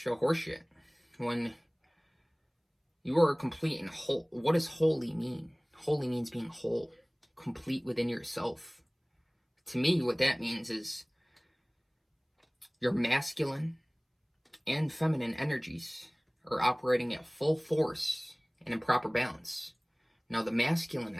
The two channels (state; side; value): identical; both; correlation 1.00